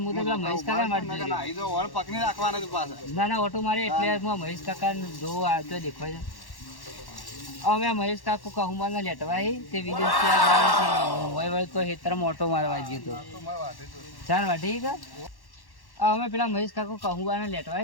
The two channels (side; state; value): right; late; 1.1 ms